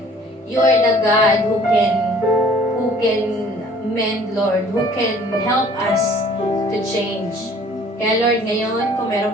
you are the God who can mend, Lord, who can help us to change. Kaya Lord, ngayon, kung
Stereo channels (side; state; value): both; normal; correlation 0.53